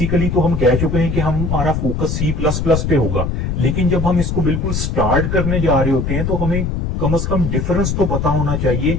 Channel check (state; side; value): noise; left; rumble, 1 dB below the sound